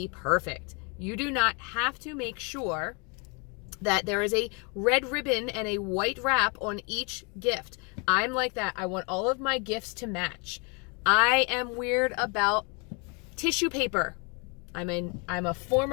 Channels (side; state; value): right; quieter; 33.3 dB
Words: perfect. You do not have to make sure that there is a red ribbon and a white wrap on each gift. I'm like that. I want all of my gifts to match. I am weird about tissue paper. I'm a